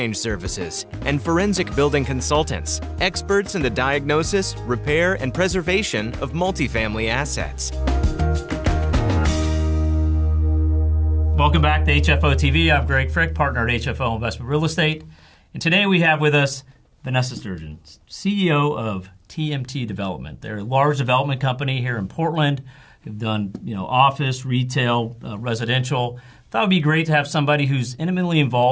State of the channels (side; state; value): both; identical; correlation 1.00